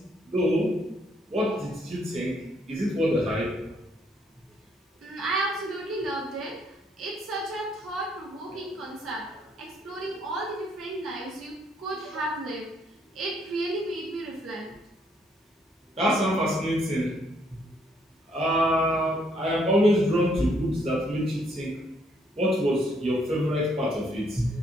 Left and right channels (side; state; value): both; normal; correlation 0.69